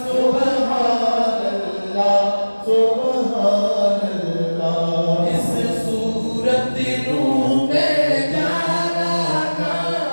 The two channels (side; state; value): both; inverted; correlation -1.00